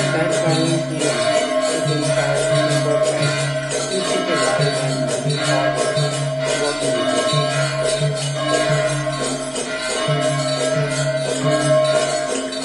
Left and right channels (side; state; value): both; identical; correlation 1.00